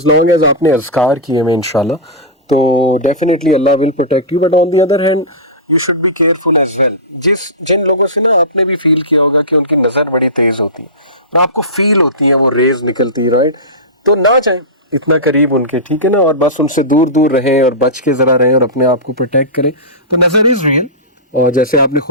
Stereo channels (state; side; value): normal; both; correlation -0.18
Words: لانگ ایز آپ نے اذکار کیے میں انشاءاللہ تو definitely Allah will protect you. But on the other hand you should be careful as well. جن لوگوں سے نا آپ نے بھی فیل کیا ہوگا کہ ان کی نظر بڑی تیز ہوتی ہے اور آپ کو فیل ہوتی ہے وہ ریز نکلتی ہے، رائٹ، تو نہ جائیں اتنا قریب ان کے، ٹھیک ہے نا، اور بس ان سے دور دور رہیں اور بچ کے ذرا رہیں اور اپنے آپ کو پروٹیکٹ کریں. تو نظر از ریئل، اور جیسے آپ نے